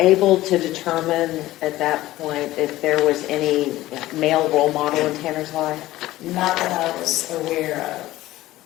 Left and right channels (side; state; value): right; quieter; 16.4 dB